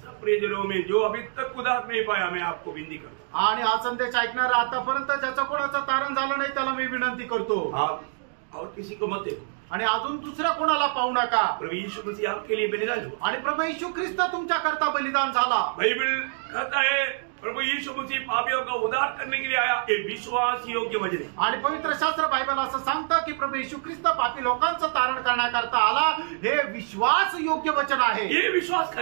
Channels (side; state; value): left; silent; digital silence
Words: सब प्रियजनों में जो अभी तक उदार नहीं पाया, मैं आपको विनती करता हूं. आणि हा संदेश ऐकणारा आतापर्यंत ज्याचं कोणाचं तारण झालं नाही त्याला मी विनंती करतो. आप और किसी को मत देखो. आणि अजून दुसऱ्या कोणाला पाहू नका. प्रभु यीशु मसीह आपके लिए बलिदान हुआ. आणि प्रभू येशू ख्रिस्त तुमच्या करता बलिदान झाला. बाइबल कहता है प्रभु यीशु मसीह पापियों का उद्धार करने के लिए आया. ये विश्वास योग्य वचन है. आणि पवित्र शास्त्र बायबल असं सांगतं की प्रभू येशू ख्रिस्त पापी लोकांचं तारण करण्याकरता आला. हे विश्वास योग्य वचन आहे. ये विश्वास